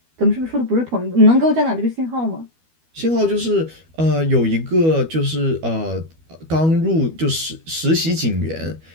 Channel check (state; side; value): late; left; 12 ms